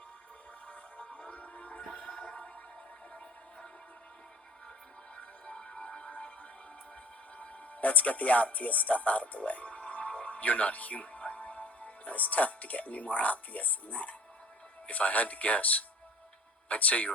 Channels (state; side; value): normal; both; correlation 0.46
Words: Let's get the obvious stuff out of the way. You're not human, right? It's tough to get any more obvious than that. If I had to guess, I'd say